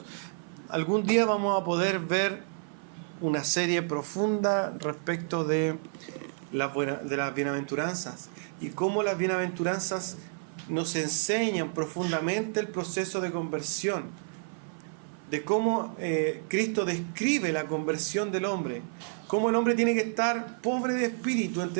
Algún día vamos a poder ver una serie profunda respecto de las bienaventuranzas y cómo las bienaventuranzas nos enseñan profundamente el proceso de conversión, de cómo Cristo describe la conversión del hombre, cómo el hombre tiene que estar pobre de espíritu,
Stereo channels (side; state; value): left; silent; 56 dB below the other